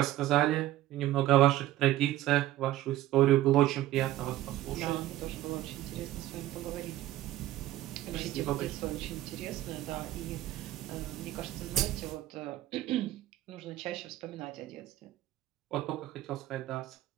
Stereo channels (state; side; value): quieter; left; 14.8 dB